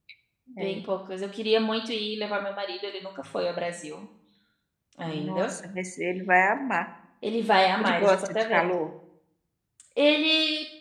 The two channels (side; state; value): both; identical; correlation 1.00